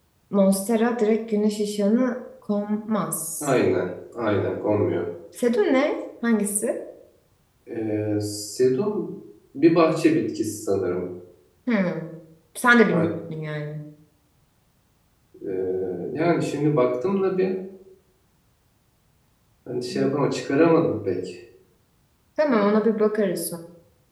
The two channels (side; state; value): both; identical; correlation 1.00